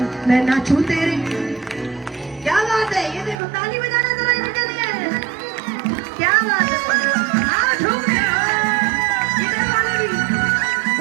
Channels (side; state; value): left; drops out; at 3.4 s